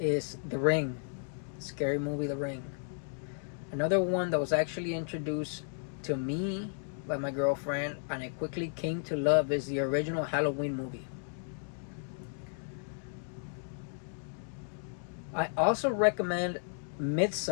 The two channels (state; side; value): silent; right; digital silence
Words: The Ring. Scary movie The Ring. Another one that was actually introduced to me by my girlfriend and I quickly came to love is the original Halloween movie. I also recommend